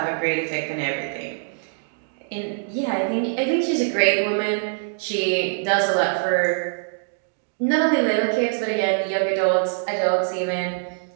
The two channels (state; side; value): silent; left; digital silence